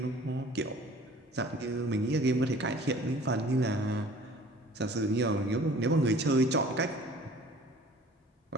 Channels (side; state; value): both; normal; correlation 0.49